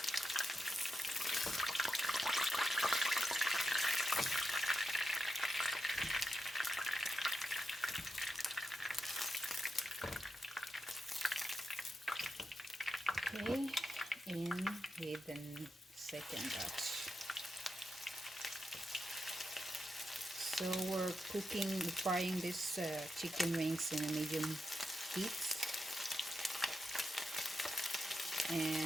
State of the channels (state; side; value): normal; both; correlation 0.87